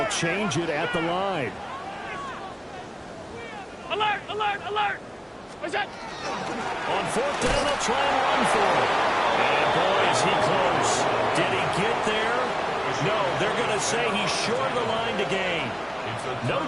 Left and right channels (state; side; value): identical; both; correlation 1.00